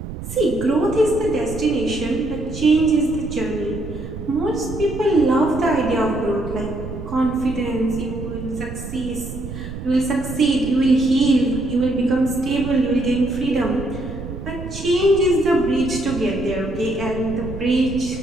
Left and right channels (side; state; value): right; noise; rumble, 9 dB below the sound